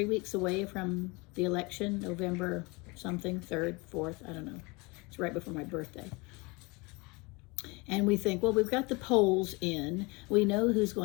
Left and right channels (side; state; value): right; quieter; 26.6 dB